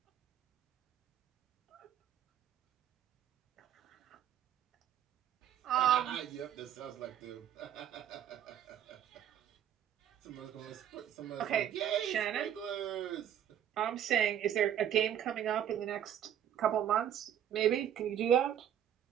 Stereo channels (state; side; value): quieter; left; 10.0 dB